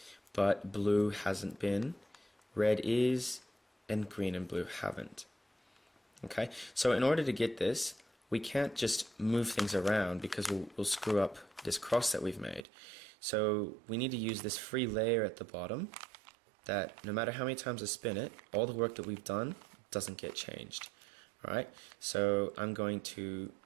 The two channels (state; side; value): drops out; left; at 12.7 s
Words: but blue hasn't been, red is, and green and blue haven't. Okay, so in order to get this, we can't just move things around because we'll screw up this cross that we've made. So we need to use this free layer at the bottom that no matter how many times I spin it, all the work that we've done doesn't get changed. Alright, so I'm going to